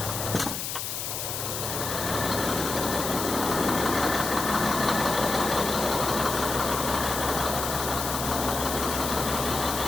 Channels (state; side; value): noise; left; hiss, 4 dB below the sound